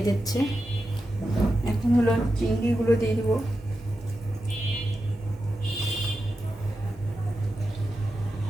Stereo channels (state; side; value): normal; both; correlation 0.90